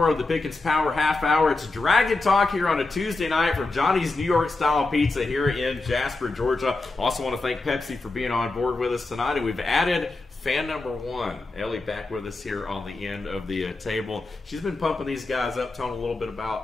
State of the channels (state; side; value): quieter; right; 3.3 dB